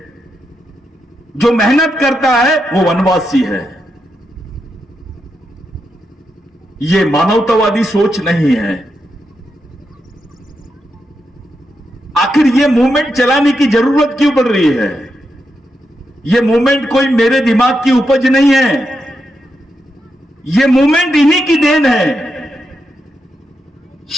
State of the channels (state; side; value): normal; both; correlation 0.84